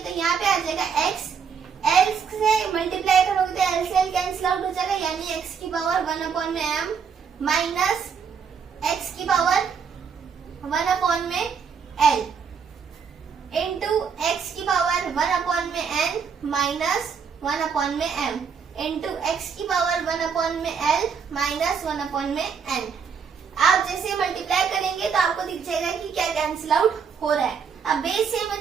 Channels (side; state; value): left; quieter; 6.5 dB